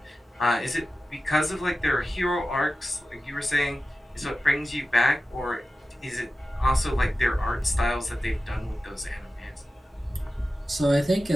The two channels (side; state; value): both; normal; correlation 0.94